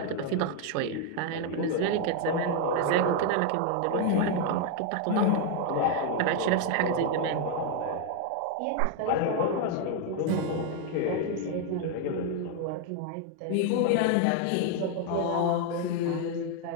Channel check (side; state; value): both; different; correlation 0.01